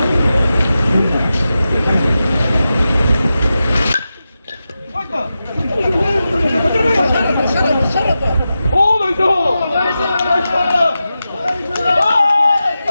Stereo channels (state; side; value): inverted; both; correlation -0.92